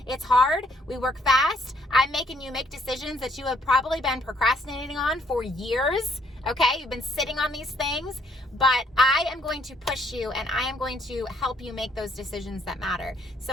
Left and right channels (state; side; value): normal; both; correlation 0.67